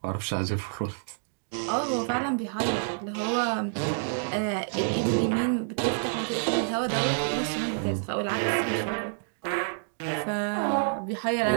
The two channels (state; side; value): silent; left; digital silence